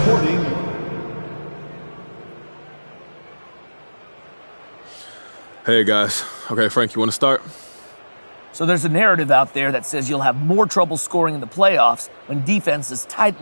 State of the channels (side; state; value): both; inverted; correlation -1.00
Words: Hey, guys. Okay, Frank, you want to start? So there's a narrative out there that says you'll have more trouble scoring in the playoffs when defenses